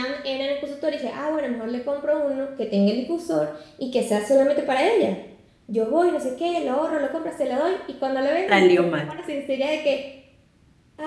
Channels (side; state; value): both; identical; correlation 1.00